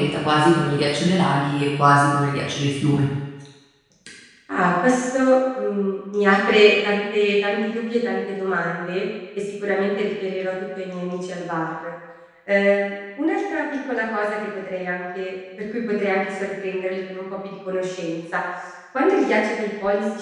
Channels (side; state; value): both; identical; correlation 1.00